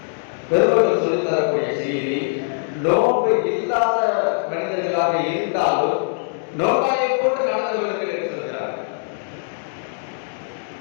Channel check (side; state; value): right; silent; 64 dB below the other